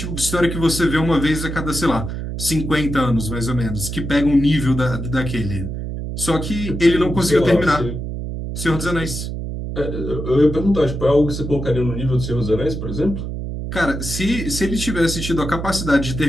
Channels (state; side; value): noise; right; hum, 5 dB below the sound